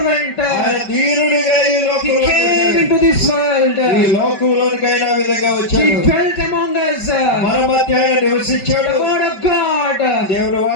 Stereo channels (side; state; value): right; late; 5.2 ms